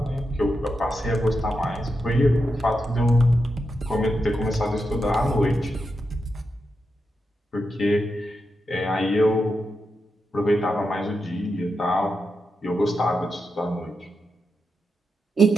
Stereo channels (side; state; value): both; normal; correlation 0.87